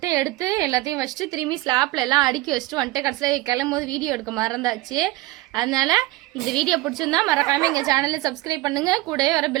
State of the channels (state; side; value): quieter; left; 18.8 dB